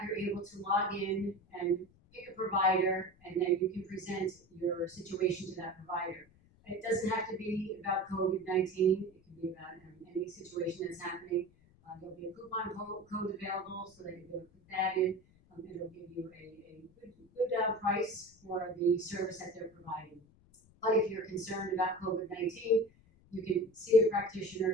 you're able to log in and pick a provider, and then you can present your situation to that provider. It doesn't have to be about COVID-19. It can be about any situation that's happening. There'll be a coupon code available so that you'll put that in. It'll give you a good price for the service that they're providing. But if you're concerned about COVID-19, you can see a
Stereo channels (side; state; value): left; noise; rumble, 29 dB below the sound